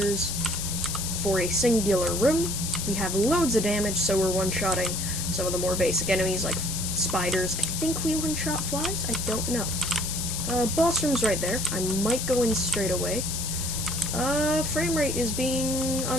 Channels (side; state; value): left; noise; hiss, 3 dB below the sound